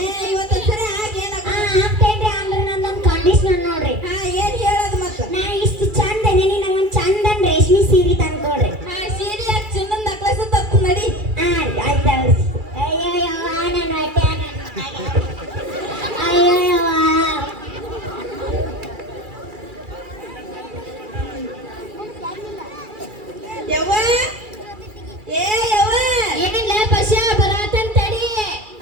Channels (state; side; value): late; left; 2.3 ms